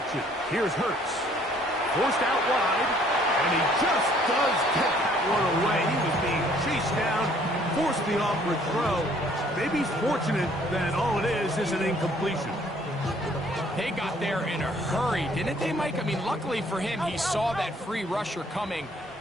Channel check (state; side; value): normal; both; correlation 0.60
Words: Here's Hurts. Forced out wide. And he just does get that one away. He was being chased down. Forced the awkward throw. Maybe he's fortunate that all it is an incompletion. They got there in a hurry, didn't they, Mike? I mean, luckily for him, he saw that free rusher coming,